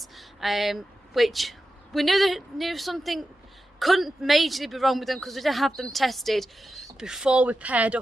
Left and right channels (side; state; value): both; normal; correlation 0.91